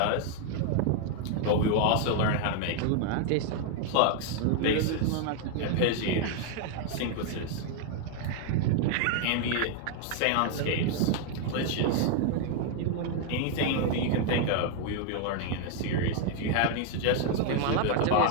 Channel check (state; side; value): different; both; correlation 0.00